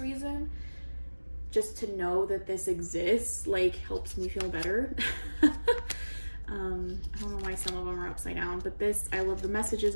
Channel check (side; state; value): both; inverted; correlation -1.00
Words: Just to know that this exists, like, helps me feel better. I don't know why some of them are upside down, but this, I love the